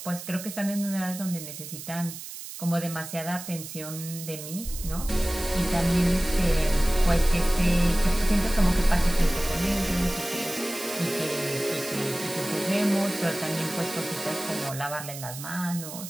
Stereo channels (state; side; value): noise; right; hiss, 11 dB below the sound